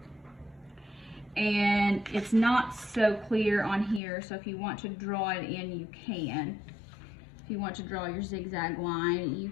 and it's not so clear on here, so if you want to draw it in, you can. If you want to draw your zigzag line, you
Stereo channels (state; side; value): drops out; right; at 4.0 s